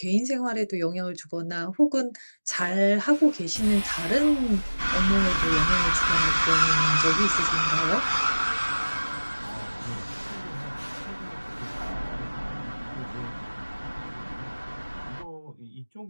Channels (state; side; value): inverted; both; correlation -1.00